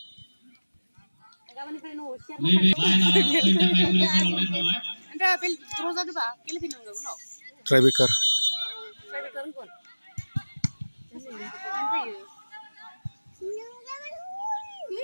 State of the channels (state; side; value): inverted; both; correlation -1.00